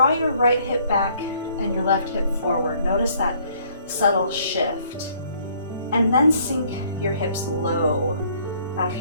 your right hip back and your left hip forward. Notice that subtle shift. And then sink your hips low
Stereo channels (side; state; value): both; inverted; correlation -0.62